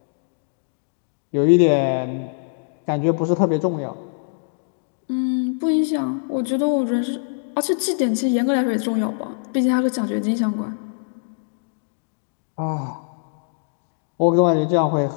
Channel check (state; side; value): silent; right; digital silence